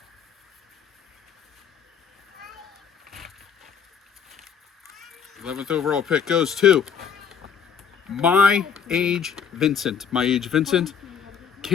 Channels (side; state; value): right; quieter; 7.1 dB